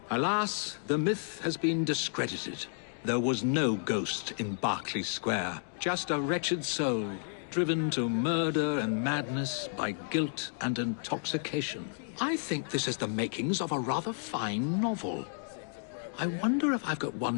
Alas, the myth has been discredited. There was no ghost in Berkeley Square, just a wretched soul, driven to murder and madness by guilt and intoxication. I think this is the makings of a rather fine novel. I wonder if I've got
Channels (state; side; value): silent; right; digital silence